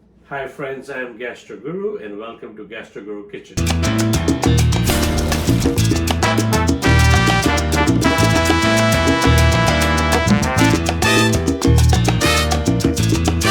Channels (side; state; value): both; identical; correlation 1.00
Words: Hi friends, I'm Gastro Guru and welcome to Gastro Guru Kitchen.